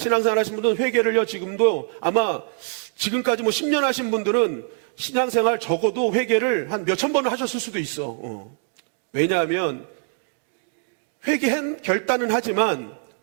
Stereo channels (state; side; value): silent; left; 59 dB below the other